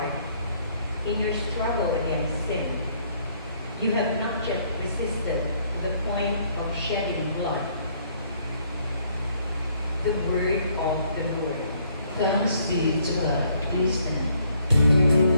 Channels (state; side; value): inverted; both; correlation -0.66